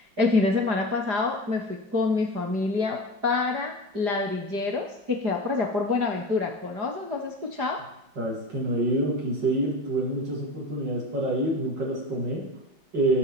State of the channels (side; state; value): left; late; 4.9 ms